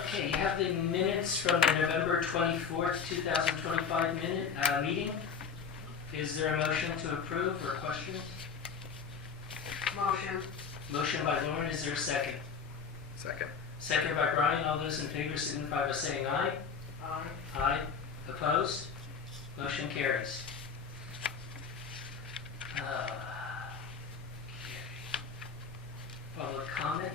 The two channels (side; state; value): right; quieter; 6.2 dB